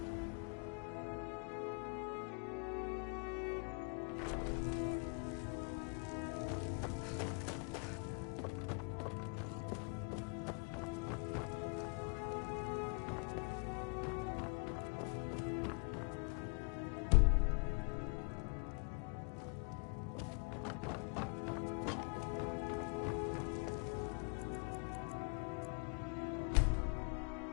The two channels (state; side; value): quieter; right; 34.8 dB